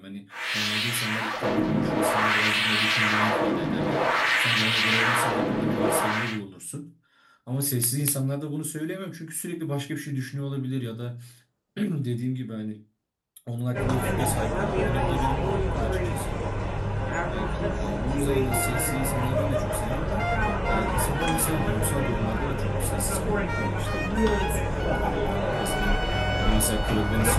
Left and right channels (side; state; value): both; identical; correlation 1.00